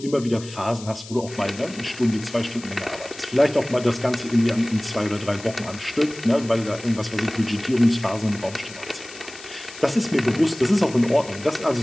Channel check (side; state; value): left; noise; hiss, 16 dB below the sound